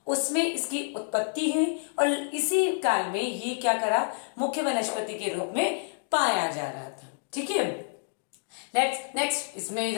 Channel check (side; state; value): right; silent; digital silence